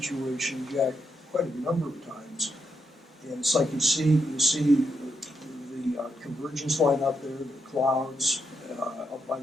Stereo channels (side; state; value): both; normal; correlation 0.80